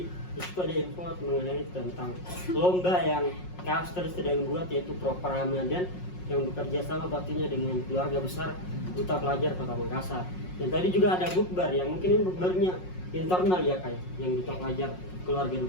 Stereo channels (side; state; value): right; late; 5.5 ms